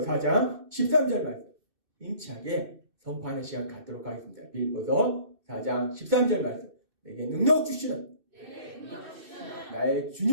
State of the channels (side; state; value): left; late; 2.6 ms